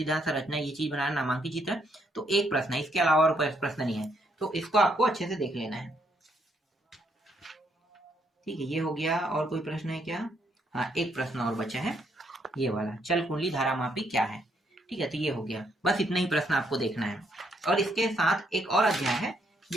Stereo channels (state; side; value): normal; both; correlation 0.73